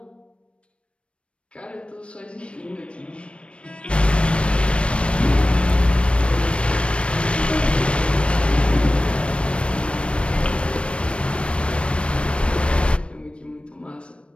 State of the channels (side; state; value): right; late; 0.059 ms